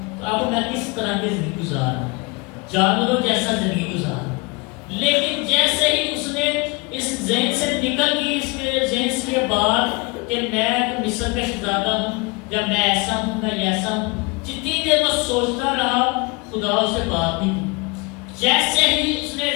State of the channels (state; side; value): quieter; right; 27.9 dB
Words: تو اب میں کس طرح کی زندگی گزار رہا ہوں؟ جانوروں جیسا زندگی گزار رہا ہوں۔ لیکن جیسے ہی اس نے اس ذہن سے نکل گئی، اس کے ذہن سے بات کہ میں مصر کا شہزادہ ہوں، یا میں ایسا ہوں، میں ایسا ہوں، جتنی دیر وہ سوچتا رہا خدا اسے بات نہیں کی۔ جیسے ہی اس نے